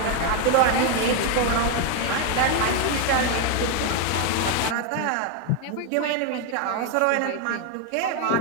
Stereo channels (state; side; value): different; both; correlation 0.01